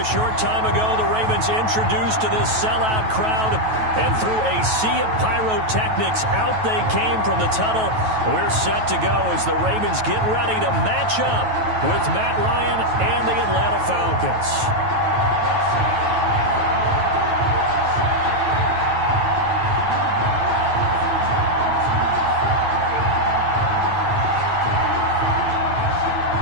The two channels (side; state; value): left; late; 9.2 ms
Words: short time ago. The Ravens introduced to this sellout crowd, and through a sea of pyrotechnics, out they came from the tunnel. We're set to go as the Ravens get ready to match up with Matt Ryan and the Atlanta Falcons.